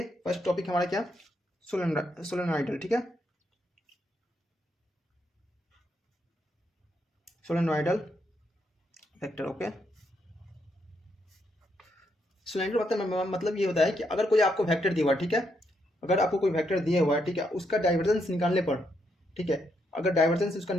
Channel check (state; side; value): normal; both; correlation 0.78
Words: फर्स्ट टॉपिक हमारा क्या, solenoidal. ठीक है, solenoidal वेक्टर. ओके, सोलेनोइडल मतलब ये होता है कि अगर कोई आपको वेक्टर दिया हुआ है, ठीक है, अगर आपको कोई वेक्टर दिया हुआ है, ठीक है, उसका डाइवर्जेंस निकालने पर, ठीक है, अगर डाइवर्जेंस उसका